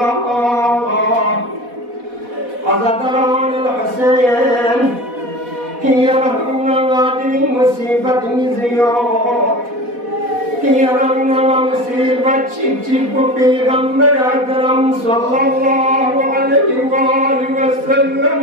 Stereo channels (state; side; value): late; left; 4.1 ms